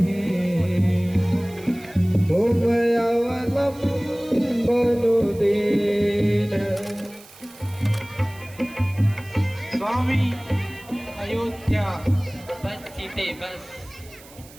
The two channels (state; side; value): noise; right; hiss, 22 dB below the sound